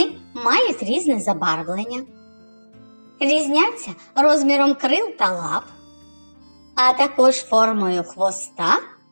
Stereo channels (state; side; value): inverted; both; correlation -1.00